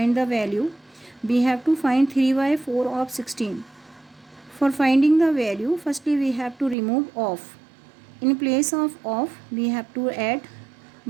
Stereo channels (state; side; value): drops out; left; at 6.8 s